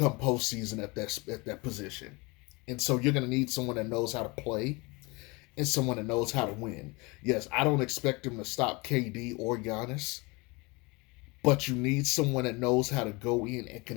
postseason at that position. And so, you're going to need someone that knows how to play and someone that knows how to win. Yes, I don't expect him to stop KD or Giannis, but you need someone that knows how to go in and can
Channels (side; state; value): right; quieter; 26.3 dB